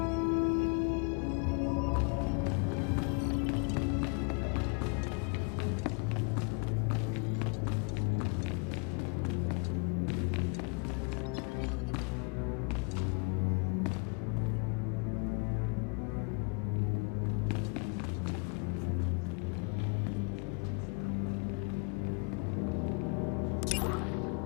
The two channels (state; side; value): quieter; right; 35.6 dB